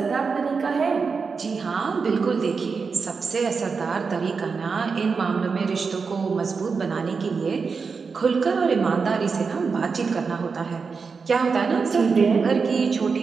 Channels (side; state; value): left; quieter; 5.1 dB